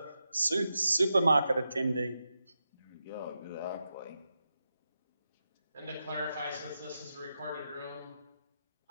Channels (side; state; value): both; inverted; correlation -0.88